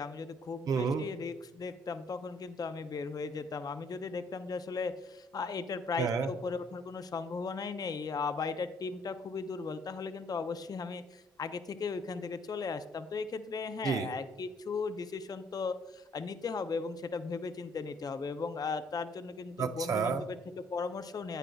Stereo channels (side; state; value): both; normal; correlation 0.63